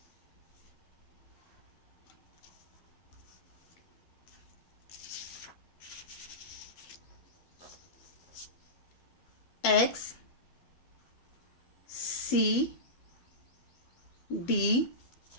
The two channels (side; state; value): right; late; 12 ms